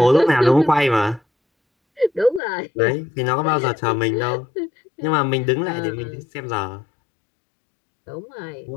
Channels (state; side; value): drops out; right; at 2.4 s